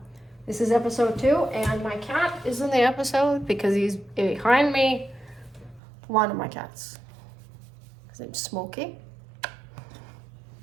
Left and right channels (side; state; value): left; drops out; at 5.8 s